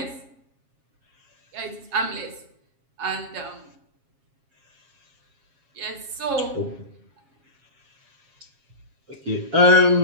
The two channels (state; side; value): late; left; 7.4 ms